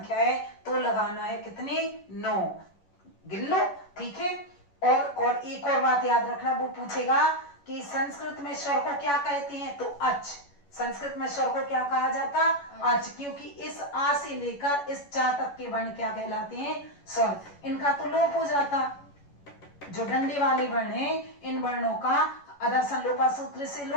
है, तो लगाना है कितने, 9। गिन लो, ठीक है। और एक और बात याद रखना, वो पूछेगा कि संस्कृत में स्वर को क्या कहते हैं, तो अच। संस्कृत में स्वर को क्या कहा जाता, अच, क्योंकि इस आ से लेकर इस चा तक के वर्ण क्या कहलाते हैं, स्वर। इनका तो लोप हो जाता, जो डंडे वाले वर्ण हैं इन वर्णों का अदर्शन लोपा सूत्र से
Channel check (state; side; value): late; right; 11 ms